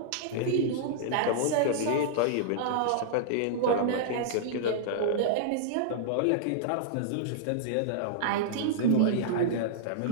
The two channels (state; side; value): different; both; correlation -0.02